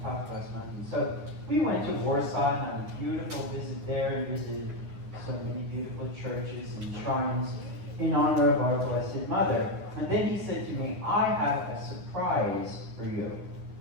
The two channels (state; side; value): late; left; 9.7 ms